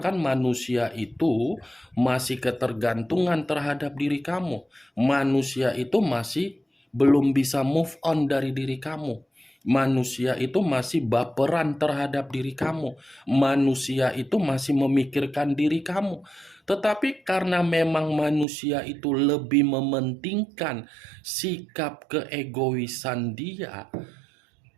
manusia itu masih ketergantungan terhadap diri kamu. Manusia itu masih belum bisa move on dari diri kamu. Manusia itu masih baperan terhadap diri kamu. Manusia itu masih memikirkan diri kamu. Tetapi karena memang manusia itu lebih mementingkan sikap keegoisan dia,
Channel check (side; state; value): left; drops out; at 18.4 s